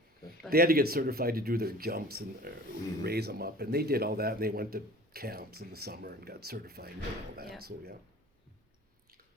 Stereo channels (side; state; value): both; normal; correlation 0.44